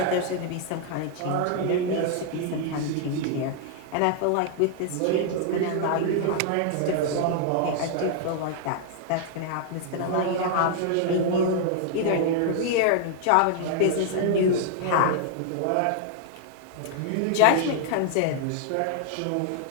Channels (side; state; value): both; different; correlation 0.00